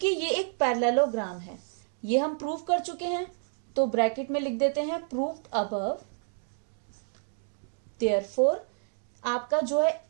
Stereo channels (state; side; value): silent; left; digital silence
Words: ये एक पैरेललोग्राम है, ये हम प्रूव कर चुके हैं, तो ब्रैकेट में लिख देते हैं प्रूव्ड अबव। देयरफॉर आपका जो है